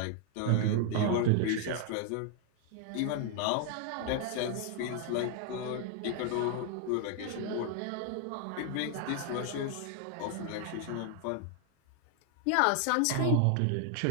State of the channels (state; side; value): different; both; correlation 0.00